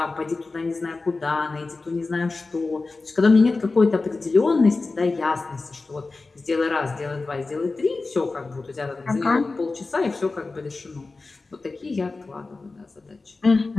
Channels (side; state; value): right; quieter; 3.7 dB